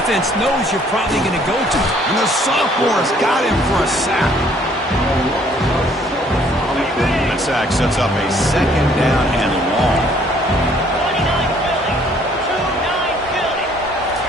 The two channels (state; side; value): normal; both; correlation 0.61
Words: knows you're probably going to go to. And the sophomore's got him for a sack. That sack sets up a 2nd down and long.